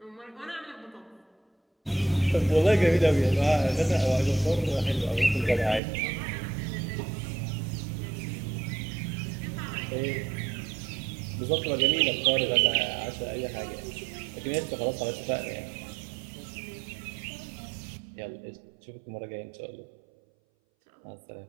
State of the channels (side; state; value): left; drops out; at 5.8 s